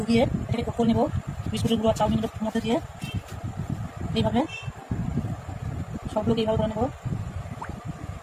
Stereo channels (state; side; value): identical; both; correlation 1.00